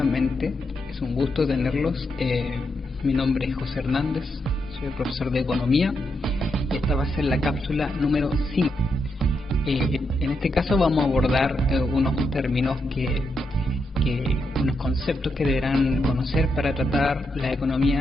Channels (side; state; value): both; normal; correlation 0.82